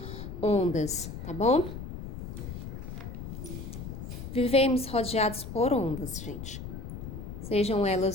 ondas, tá bom? Vivemos rodeados por ondas, gente. Sejam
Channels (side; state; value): left; noise; rumble, 9 dB below the sound